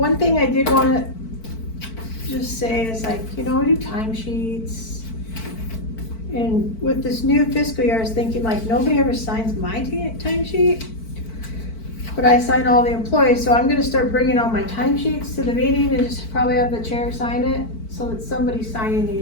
thing I did wanna just say is we do timesheets. And with this new fiscal year, I was thinking nobody ever signs my timesheet. But I sign all the employees, so I'm gonna start bringing all my timesheets to the meeting and just probably have the chair sign it, so that somebody's signing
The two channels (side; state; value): right; late; 4.5 ms